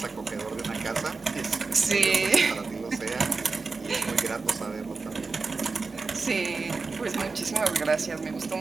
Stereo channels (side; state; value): left; quieter; 4.2 dB